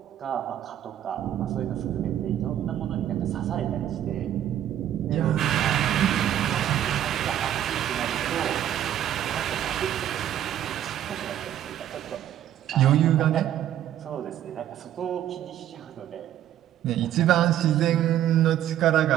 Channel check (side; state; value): left; quieter; 11.4 dB